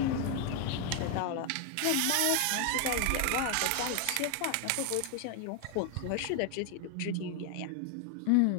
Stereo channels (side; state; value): both; different; correlation 0.00